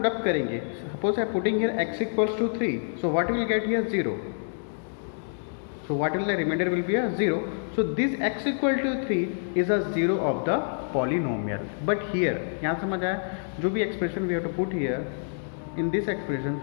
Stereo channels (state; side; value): silent; right; digital silence